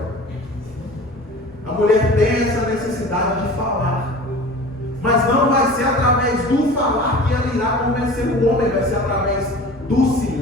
A mulher tem essa necessidade de falar, mas não vai ser através do falar que ela irá convencer o homem, vai ser através do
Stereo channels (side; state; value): both; normal; correlation 0.40